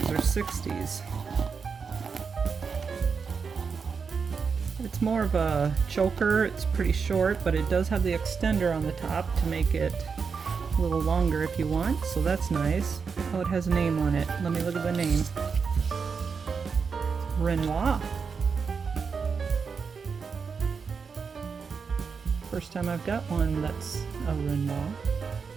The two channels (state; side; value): quieter; left; 5.6 dB